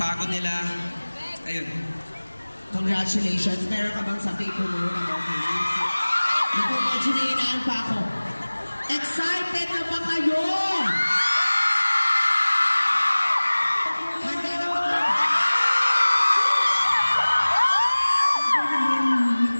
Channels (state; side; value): inverted; both; correlation -1.00